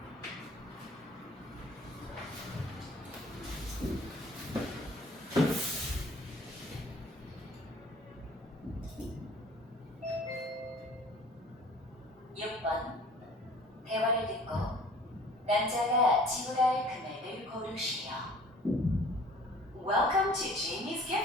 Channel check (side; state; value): both; normal; correlation 0.49